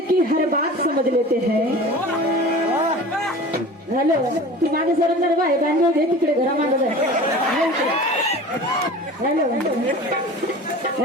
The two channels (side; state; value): both; normal; correlation 0.38